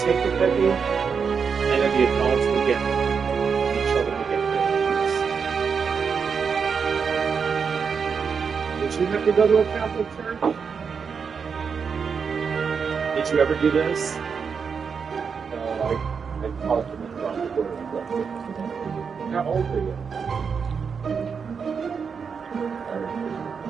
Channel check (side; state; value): left; quieter; 6.1 dB